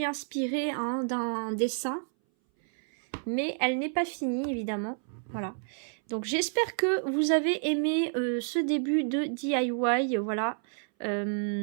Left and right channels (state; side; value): silent; left; 58 dB below the other